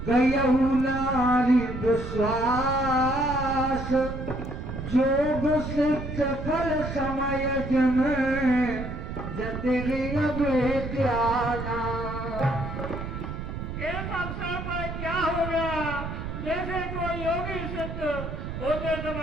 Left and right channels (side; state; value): right; noise; rumble, 6 dB below the sound